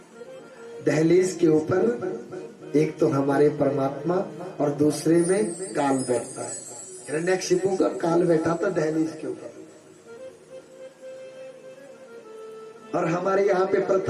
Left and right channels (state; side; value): identical; both; correlation 1.00